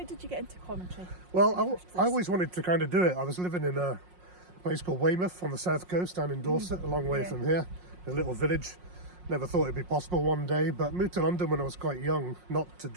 did you get into commentary? Well, I always wanted to kind of do it. I was living in a place called Weymouth on the south coast down in Dorset, a long way from here, a little village. Never thought it'd be possible one day, but moved to London when I was quite young, not to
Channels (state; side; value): late; left; 5.5 ms